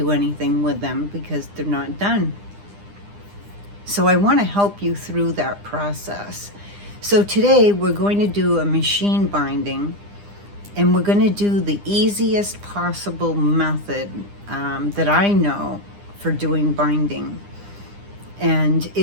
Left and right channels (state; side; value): late; left; 9.9 ms